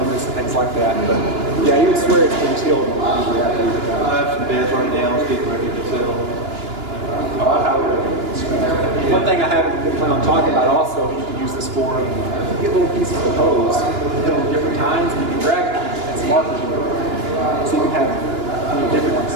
and things like that. But yeah, you would swear it's been tilled. Usually after you I have some beds right now. It's getting ready to settle. One thing I haven't been planning on talking about also, you can use this for, you get little pieces of hose, put on different tines, and you can drag it and some markers in it. So you can have different ones,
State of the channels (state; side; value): late; left; 2.9 ms